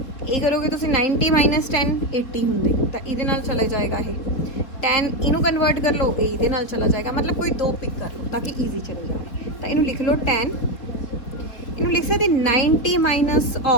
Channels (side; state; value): right; late; 4.3 ms